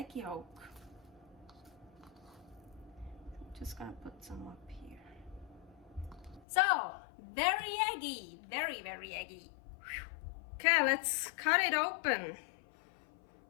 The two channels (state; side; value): drops out; right; at 6.5 s